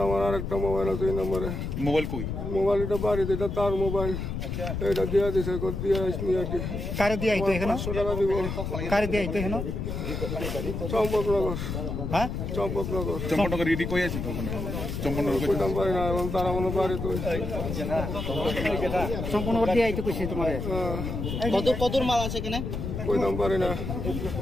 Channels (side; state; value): left; noise; rumble, 4 dB below the sound